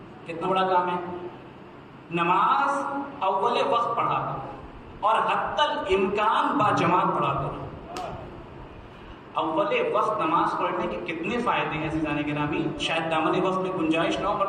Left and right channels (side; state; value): both; identical; correlation 1.00